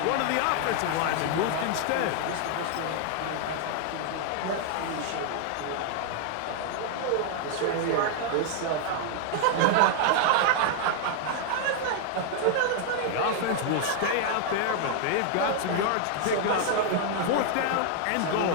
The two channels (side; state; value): both; different; correlation 0.00